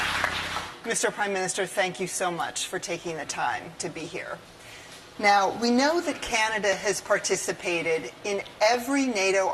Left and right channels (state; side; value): identical; both; correlation 1.00